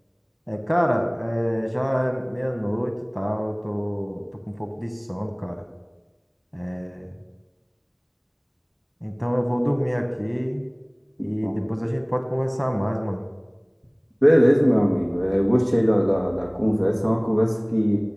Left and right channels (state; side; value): identical; both; correlation 1.00